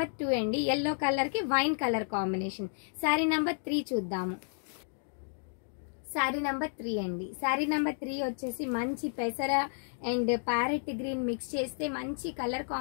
2 అండి. ఎల్లో కలర్ కి wine colour combination. Sari number 3 చూద్దాము. శారీ నంబర్ 3 అండి. శారీ నంబర్ 3 వచ్చేసి మంచి పెసర అండ్ ప్యారెట్ గ్రీన్ మిక్స్ చేస్తే మంచి కలర్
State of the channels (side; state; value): right; silent; digital silence